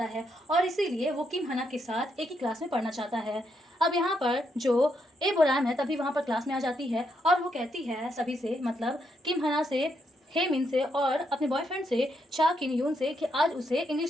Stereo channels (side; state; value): both; normal; correlation 0.78